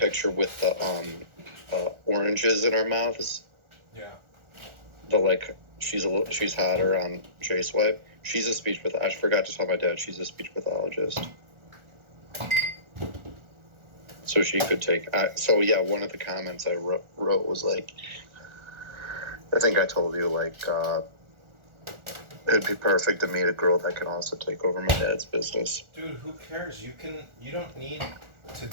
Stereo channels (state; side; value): late; left; 1.4 ms